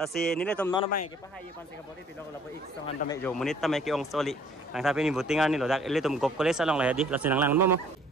si nili tom nono bang ke pahai pan se ka bodi pilo lapu ik song han tame jo munit tame ke ong soli. Nang sapi ni buting ani lo dak ele tom gop kole salong lah di lo sinang lang mo.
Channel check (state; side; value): normal; both; correlation 0.57